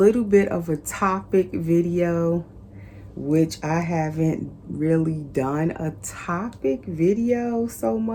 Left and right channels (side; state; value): both; identical; correlation 1.00